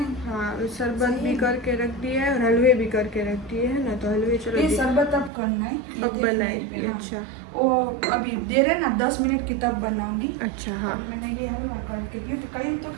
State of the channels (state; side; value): drops out; left; at 5.3 s